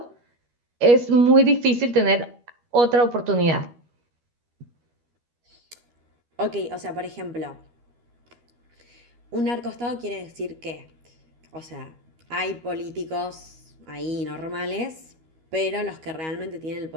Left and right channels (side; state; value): left; late; 12 ms